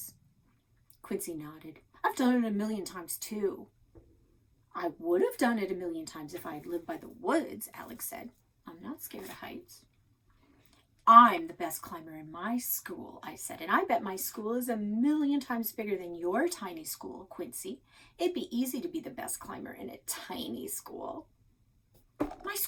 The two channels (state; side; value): identical; both; correlation 1.00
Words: Quincy nodded. I've done it a million times too. I would have done it a million times if I had lived by the woods, Alex said. I'm not scared of heights. I'm the best climber in my school, I said, and I bet my school is a million times bigger than your tiny school, Quincy. It'd be easy to be the best climber in a tiny school. My